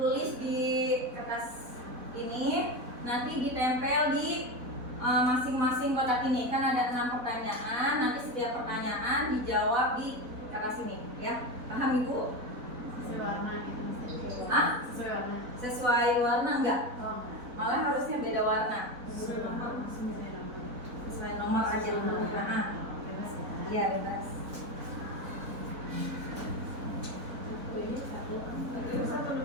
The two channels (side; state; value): left; late; 4.0 ms